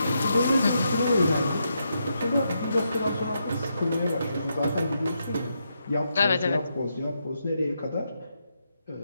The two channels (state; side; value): inverted; both; correlation -0.82